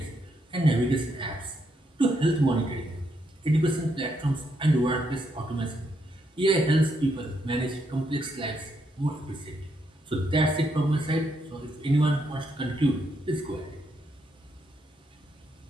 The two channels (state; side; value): normal; both; correlation 0.77